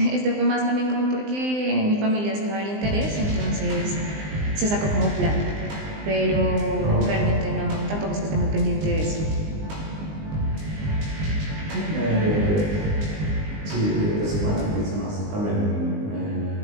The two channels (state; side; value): late; left; 19 ms